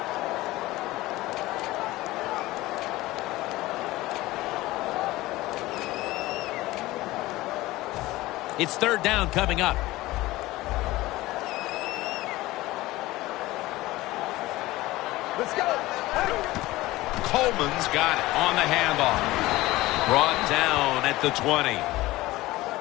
It's 3rd down coming up. Let's go. Coleman's got it on the handoff. Brought down at the 20.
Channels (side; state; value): right; quieter; 18.4 dB